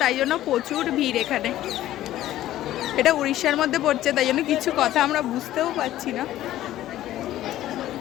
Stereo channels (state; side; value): quieter; right; 13.8 dB